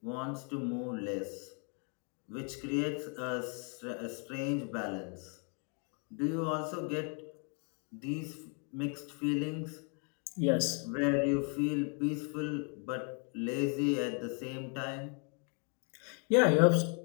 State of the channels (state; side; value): quieter; right; 37.6 dB